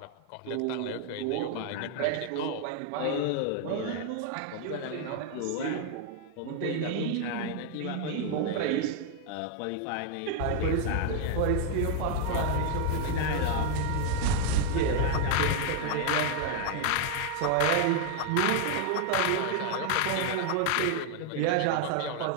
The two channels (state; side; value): different; both; correlation 0.00